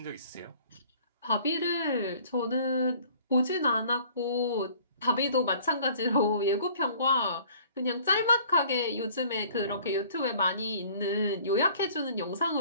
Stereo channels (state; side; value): inverted; both; correlation -0.53